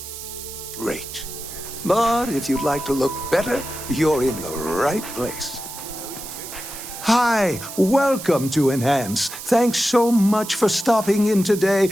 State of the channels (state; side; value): noise; right; hiss, 11 dB below the sound